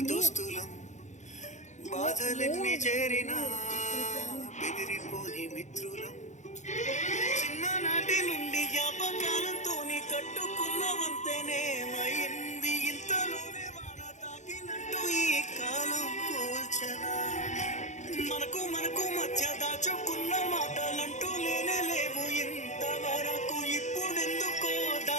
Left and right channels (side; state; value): right; late; 0.34 ms